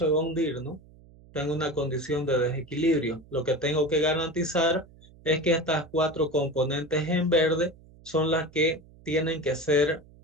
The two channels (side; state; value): right; noise; hum, 24 dB below the sound